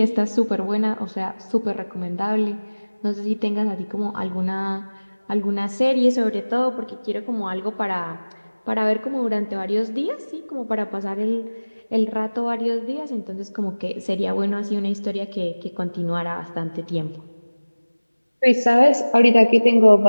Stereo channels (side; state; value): both; inverted; correlation -1.00